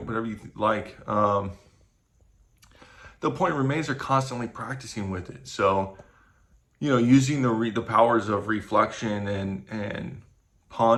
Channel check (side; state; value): both; identical; correlation 1.00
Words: you like. The point remains they're constantly practicing with it. So, using the powers of reflection and